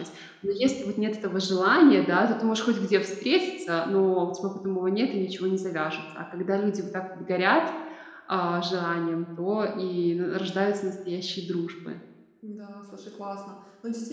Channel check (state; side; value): identical; both; correlation 1.00